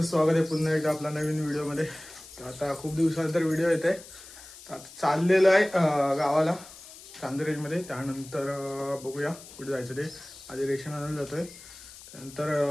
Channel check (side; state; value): left; noise; hiss, 18 dB below the sound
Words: स्वागत आहे पुन्हा एकदा आपल्या नवीन व्हिडिओमध्ये। तर आता खूप दिवसानंतर व्हिडिओ येत आहे। तर आता चाललेलं आहे गावाला चांदरेजमध्ये। त्यानंतर बघूया कुठे जायचं ते। आधी रेशन आणायला जातोय,